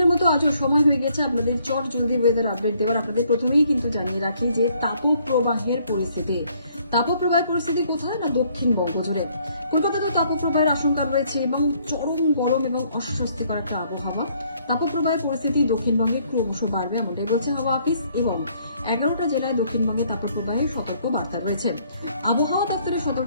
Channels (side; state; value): both; inverted; correlation -0.66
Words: মতো আজও সময় হয়ে গেছে আপনাদের চট জলদি ওয়েদার আপডেট দেওয়ার। আপনাদের প্রথমেই কিন্তু জানিয়ে রাখি যে তাপপ্রবাহের পরিস্থিতি কোথায় না দক্ষিণবঙ্গ জুড়ে। কলকাতাতেও তাপপ্রবাহের আশঙ্কা রয়েছে এবং চরম গরম এবং অস্বস্তিকর একটা আবহাওয়া। তাপপ্রবাহের পরিস্থিতি দক্ষিণবঙ্গে ক্রমশ বাড়বে এমনটাই বলছে হাওয়া অফিস, এবং 11টা জেলায় দক্ষিণবঙ্গে তাপপ্রবাহের সতর্ক বার্তা রয়েছে। আবহাওয়া দপ্তরের